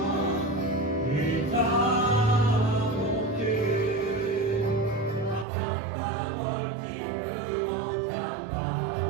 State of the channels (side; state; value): left; drops out; at 5.5 s